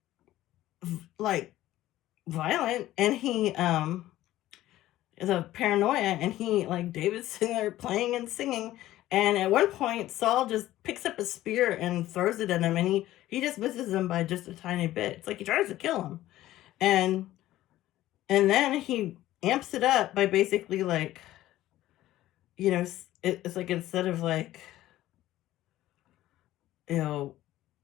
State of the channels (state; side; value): quieter; right; 14.9 dB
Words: violent, and he is a paranoia, and he, like, David's sitting there playing and singing, and at one point Saul just picks up a spear and throws it at him, and he just misses him by just a tiny bit. It's like he tries to kill him, and then he amps it up by basically, like, it's like, instead of, like,